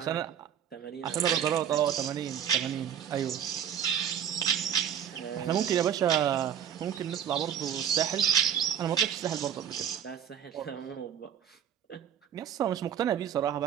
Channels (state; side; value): quieter; left; 9.0 dB